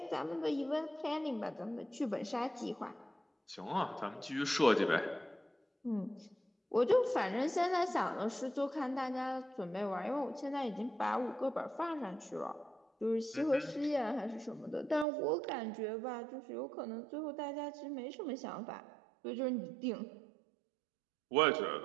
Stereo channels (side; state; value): left; drops out; at 15.1 s